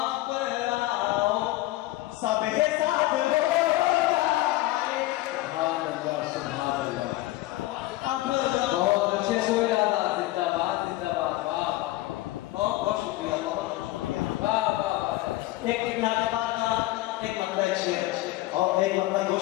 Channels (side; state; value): right; quieter; 17.6 dB